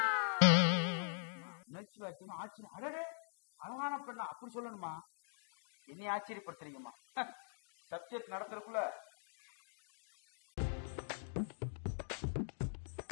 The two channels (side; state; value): right; silent; digital silence